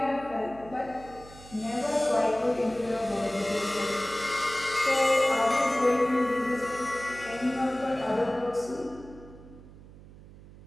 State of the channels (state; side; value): noise; right; hum, 19 dB below the sound